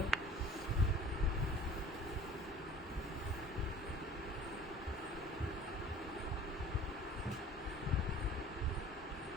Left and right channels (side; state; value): both; normal; correlation 0.47